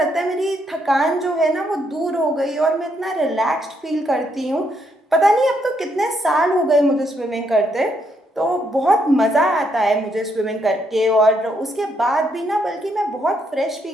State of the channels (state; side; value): normal; both; correlation 0.75